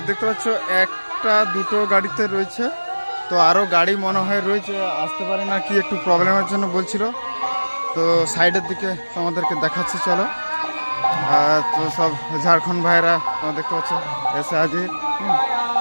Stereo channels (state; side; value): inverted; both; correlation -1.00